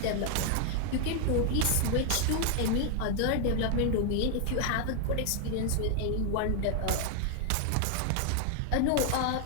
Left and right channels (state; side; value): different; both; correlation 0.00